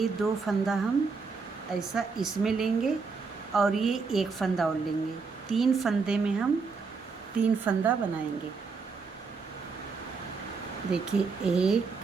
2 फंदा हम ऐसा इसमें लेंगे और ये 1 फंदा और लेंगे। 3 फंदे में हम 3 फंदा बनाएंगे। देखिए 1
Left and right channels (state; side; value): quieter; left; 4.8 dB